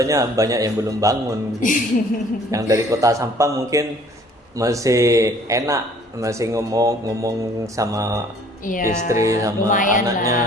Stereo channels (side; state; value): both; normal; correlation 0.56